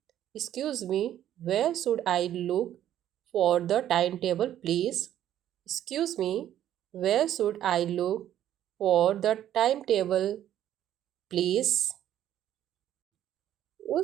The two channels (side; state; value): left; quieter; 11.5 dB